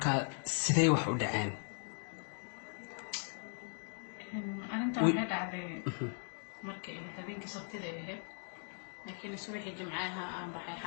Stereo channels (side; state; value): right; silent; 52 dB below the other